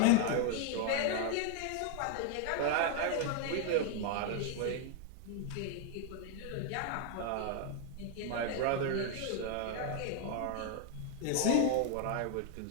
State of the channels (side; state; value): both; different; correlation 0.00